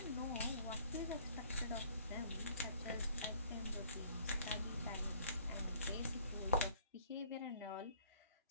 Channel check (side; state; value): both; inverted; correlation -0.56